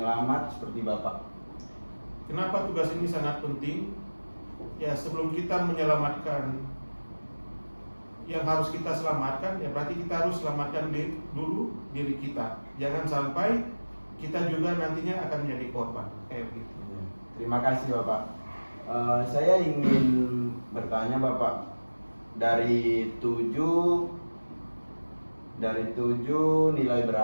seperti Bapak? Kenapa tugas ini sangat penting? Ya, sebelum kita menyelamatkan yang harus kita selamatkan, ya berarti kita harus selamatkan dulu diri kita. Jangan sampai kita juga nantinya akan menjadi korban kayak begitu. Terima kasih Bapak. Saya ingin bertanya Bapak, dari tujuh nilai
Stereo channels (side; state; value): both; inverted; correlation -1.00